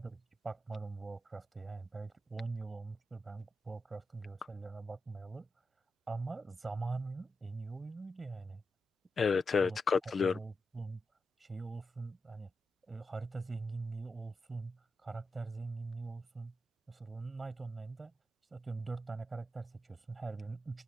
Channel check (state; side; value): normal; both; correlation 0.88